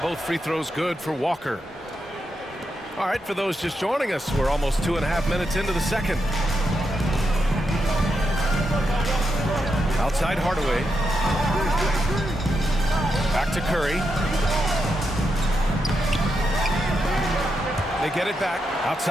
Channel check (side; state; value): both; normal; correlation 0.84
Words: both free throws good for Walker. All right, for those just joining us, we're almost 2.5 minutes into the second. Outside Hardaway. Back to Curry. They get it back.